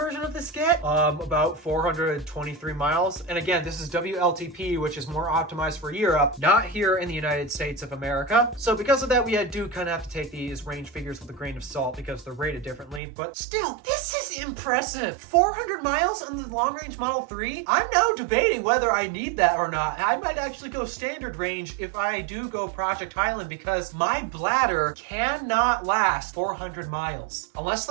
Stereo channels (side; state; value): left; drops out; at 13.0 s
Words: of this get? About 423 miles. And again, this is WLTP, which is more optimized for Europe, not here in the United States of America. So because of that, we do kind of have to take these range figures with a grain of salt because they're rated differently. But still, this is impressive. 400 miles on the long-range Model 3? I'm now debating whether I need that or not. I might actually go standard range if I do go Project Highland because my bladder cannot last 400 miles. Unless